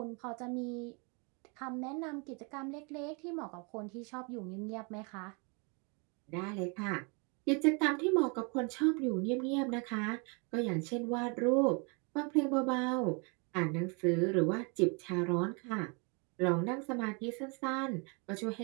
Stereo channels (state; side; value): quieter; left; 33.4 dB